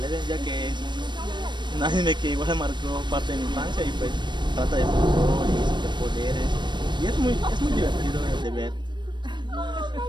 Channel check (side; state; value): left; late; 0.22 ms